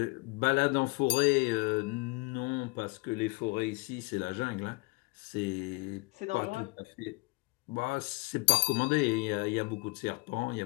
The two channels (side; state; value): right; quieter; 25.8 dB